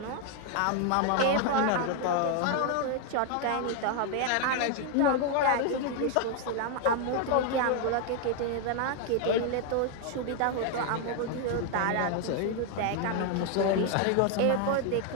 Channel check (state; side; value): different; both; correlation 0.00